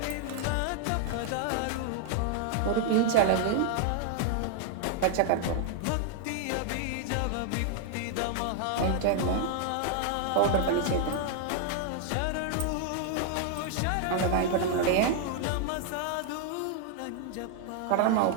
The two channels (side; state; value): both; different; correlation 0.00